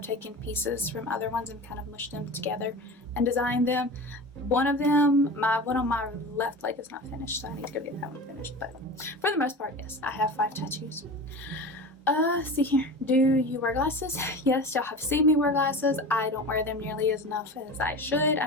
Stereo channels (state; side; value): normal; both; correlation 0.31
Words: taken pieces from other ones and kind of mushed them together and designed them. One of them, my one on my left leg is not finished, so I need to go get that one finished. But for the most part, yes, I have 5 tattoos. See here. Do you wear glasses? Yes, y'all have seen me wear glasses. I don't wear them nearly as enough as I should.